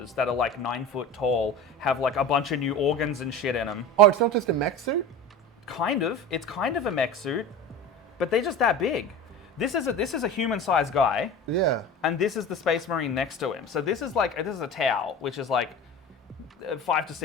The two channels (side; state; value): both; normal; correlation 0.33